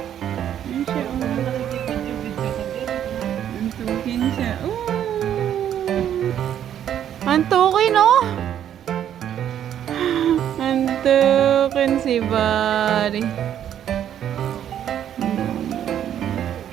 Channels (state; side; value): quieter; left; 10.2 dB